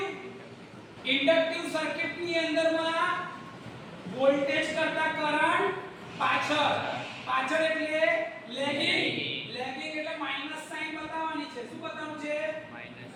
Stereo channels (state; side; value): identical; both; correlation 1.00